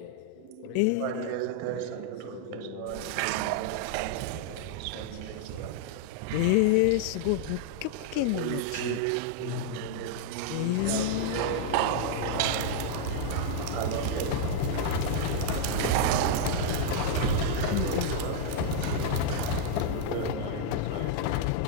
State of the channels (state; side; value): different; both; correlation -0.01